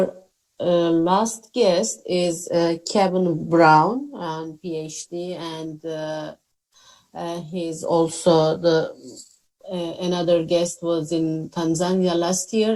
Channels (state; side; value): identical; both; correlation 1.00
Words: last guest is Kevin Brown, PhD, and he's also the another guest was in Tanzania last